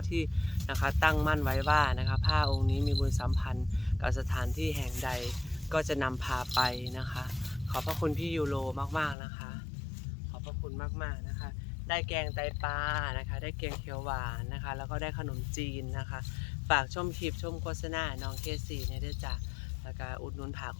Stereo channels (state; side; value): drops out; right; at 9.2 s